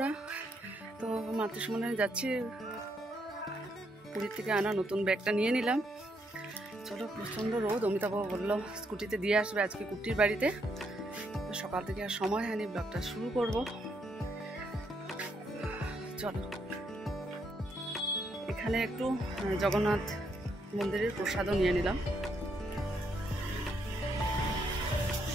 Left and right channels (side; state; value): both; normal; correlation 0.76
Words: তো মাতৃসম্মেলনে যাচ্ছি, পুরীর থেকে আনা নতুন ব্যাগটা নিয়ে নিলাম। চলো, প্রচণ্ড রোদ। অমিতাভ বললো স্কুটিতে দিয়ে আসবে আজকে কুট্টির বাড়িতে। সকাল থেকে আর সময় হয়নি, ব্লগটা শুরু করব। চলো, এখানে একটু জগন্নাথ মন্দিরের প্রসাদও নিয়ে নিলাম।